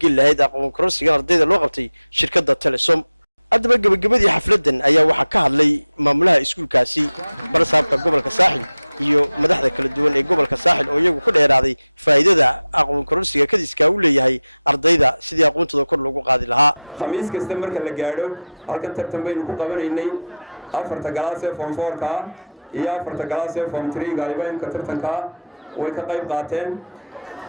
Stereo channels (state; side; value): inverted; both; correlation -0.82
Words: lahayd aqoon kororsigan ardayda loo qabtay shirkadda Telesom. haddaba gabagabadii xafladan ayaa waxaa ka hadlay maamulaha iskuulkaasi barsaabka gobolka saaxil iyo madaxda kala duwan ee gobolka saaxil oo iyagu ku dheeraaday faa'iidada aqoon kororsiga kadiska uu leeyahay ardayda sidii aqoontooda kor loogu qaadi lahaa. khamiis kasta marka la gaadho halkan tartan baynu ku qabanaynay afarta galaas ee form 4ka iyo afarta galaas ee form 3ga aybaynka tartanka way ka qayb qaateen.